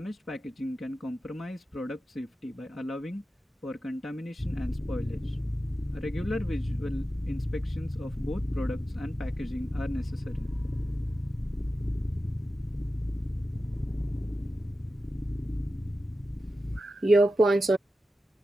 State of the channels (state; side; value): normal; both; correlation 0.92